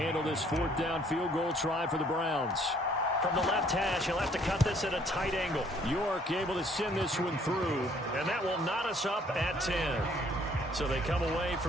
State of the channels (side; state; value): both; normal; correlation 0.62